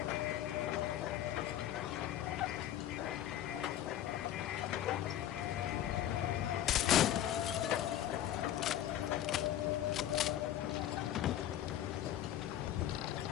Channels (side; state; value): right; quieter; 12.0 dB